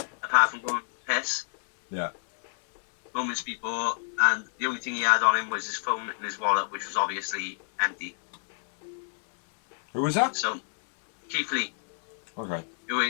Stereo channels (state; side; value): silent; right; digital silence